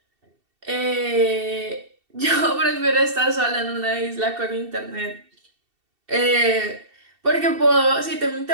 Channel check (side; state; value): left; late; 2.7 ms